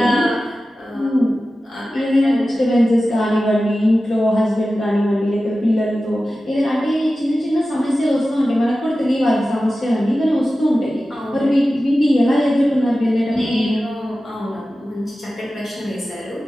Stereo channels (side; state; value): both; normal; correlation 0.94